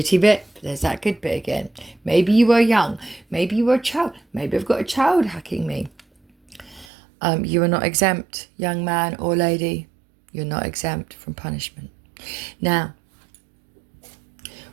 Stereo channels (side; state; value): left; drops out; at 6.9 s